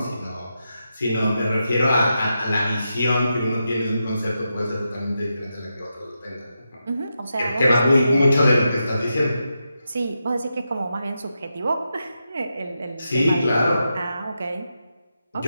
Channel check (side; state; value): both; inverted; correlation -0.87